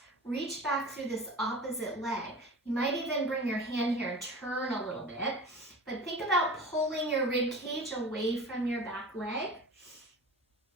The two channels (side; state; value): both; normal; correlation 0.36